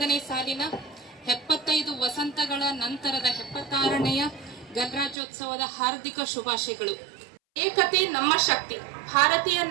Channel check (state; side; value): drops out; left; at 5.2 s